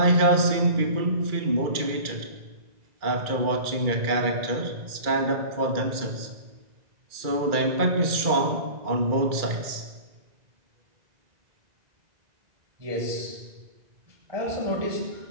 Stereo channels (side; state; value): left; late; 2.3 ms